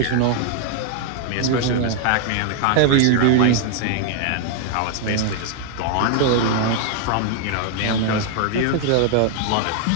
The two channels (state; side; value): different; both; correlation 0.00